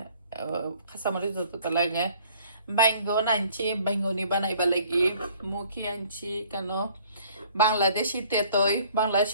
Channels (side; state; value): both; inverted; correlation -0.57